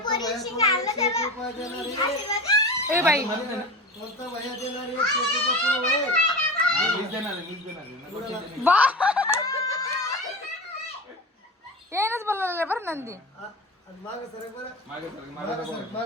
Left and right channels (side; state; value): both; normal; correlation 0.29